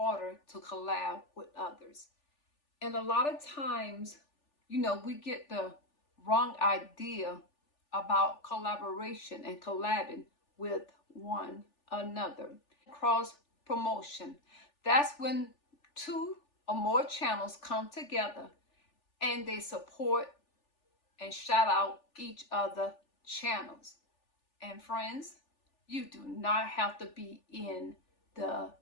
to collab with others. And a lot of times, we get the wrong idea about collaboration and collabing with one another. Cross promotion. That's when two or more channels come together and they support and shout out each other channels. And friends, you do not have to be in the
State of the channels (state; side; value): late; right; 3.4 ms